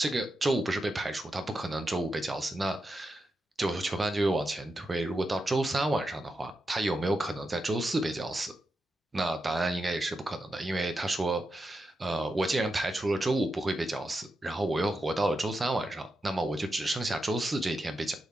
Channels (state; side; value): normal; both; correlation 0.88